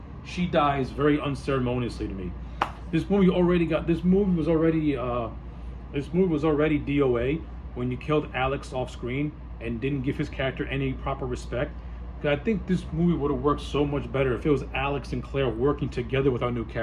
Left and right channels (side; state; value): both; identical; correlation 1.00